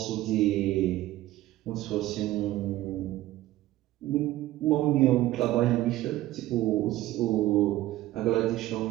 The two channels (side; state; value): left; quieter; 15.7 dB